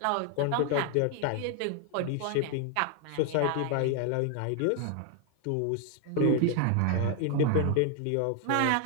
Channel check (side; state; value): both; different; correlation 0.00